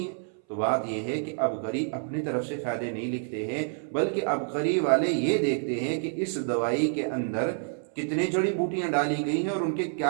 है। तो बात यह है कि अबकरी अपनी तरफ से फ़ायदे नहीं लिखते हैं, बल्कि अबकरी वाले ये देखते हैं कि इस दवाई के अंदर कितने जड़ी बूटियां डाली गई हैं और उनके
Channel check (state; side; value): silent; left; 59 dB below the other